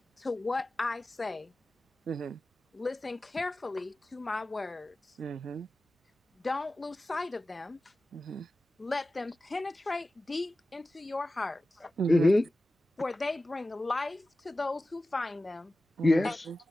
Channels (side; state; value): both; normal; correlation 0.95